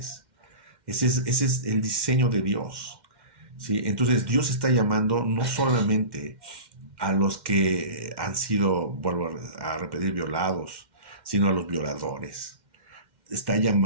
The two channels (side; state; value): left; late; 2.1 ms